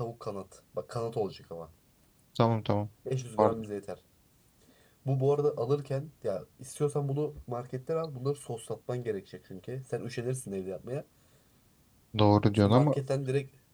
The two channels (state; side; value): identical; both; correlation 1.00